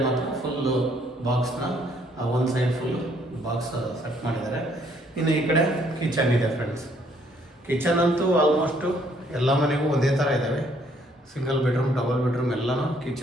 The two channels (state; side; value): normal; both; correlation 0.66